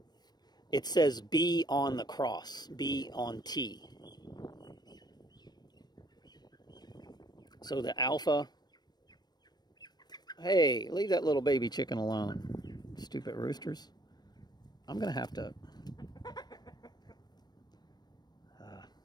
it says B on the cross. B on T. So the Alpha. Hey, leave that little baby chicken alone. Stupid roosters. I'm going to have to...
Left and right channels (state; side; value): late; right; 0.20 ms